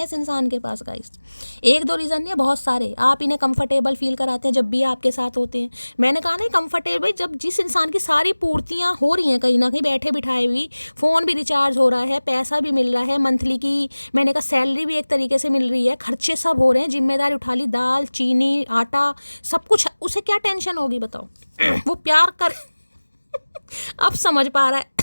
इस इंसान के पास गाइस, एक दो रीज़न नहीं है, बहुत सारे। आप इन्हें कंफर्टेबल फील कराते हैं जब भी आपके साथ होते हैं। मैंने कहा ना कंफर्टेबल, जब जिस इंसान की सारी पूर्तियाँ हो रही हैं कहीं ना कहीं बैठे बिठाए हुई, फ़ोन भी रिचार्ज हो रहा है, पैसा भी मिल रहा है मंथली की, मैंने कहा सैलरी भी एक तरीके से मिल रही है, खर्चे सब हो रहे हैं, जिम्मेदारी उठा ली, दाल चीनी आटा सब कुछ, उसे क्या टेंशन होगी बताओ। वो प्यार कर अब समझ पा रहा है।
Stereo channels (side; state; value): both; inverted; correlation -1.00